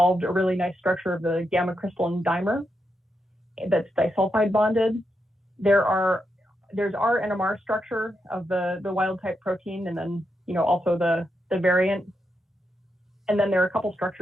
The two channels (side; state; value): both; normal; correlation 0.84